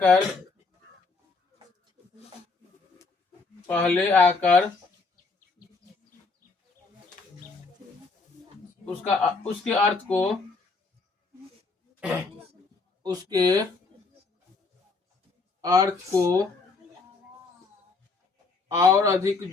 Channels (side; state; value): right; quieter; 4.1 dB